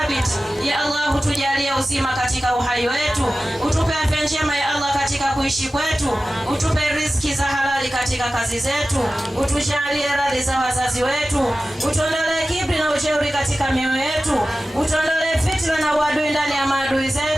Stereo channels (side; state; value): both; normal; correlation 0.95